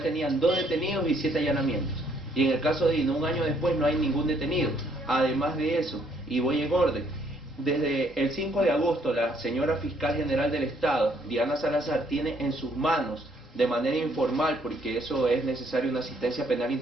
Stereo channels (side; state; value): both; normal; correlation 0.67